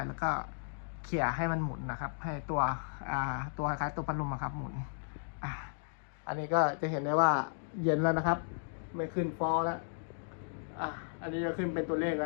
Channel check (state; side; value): silent; right; digital silence